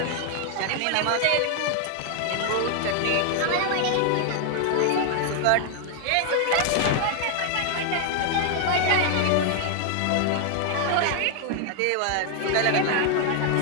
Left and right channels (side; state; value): both; different; correlation 0.00